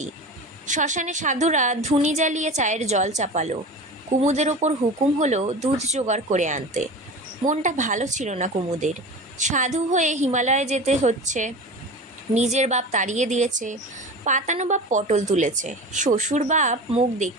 শ্মশানে সাধুরা ধুনি জ্বালিয়ে চায়ের জল চাপালো। কুমুদের ওপর হুকুম হলো দুধ জোগাড় করে আনতে। মনটা ভালো ছিল না কুমুদের। সাধু হয়ে হিমালয়ে যেতে হচ্ছে। নিজের বাপ তাড়িয়ে দিয়েছে, পাতানো বাপ পটল তুলেছে, শ্বশুর বাপ মুখ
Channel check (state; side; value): normal; both; correlation 0.32